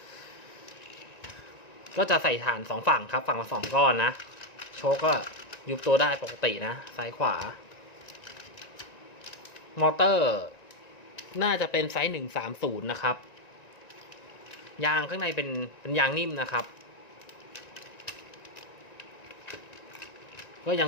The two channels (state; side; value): late; right; 1.9 ms